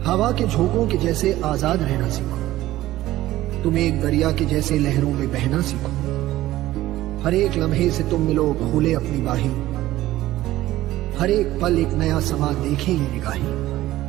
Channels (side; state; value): left; quieter; 15.5 dB